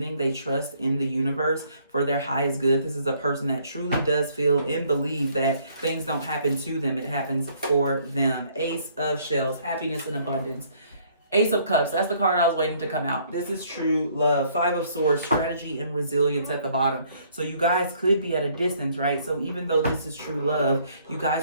They trust in the universe for their highest good. This is a person that truly does feel and believe that things don't happen to them. It happens for them. Ace of Shells, happiness and abundance. Ace of Cups, that's the card I was waiting to come out. This is true love. Five of Swords, strategy and resilience at the bottom. So you guys could be at a distance, right? So even though this is true love, you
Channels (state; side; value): inverted; both; correlation -0.63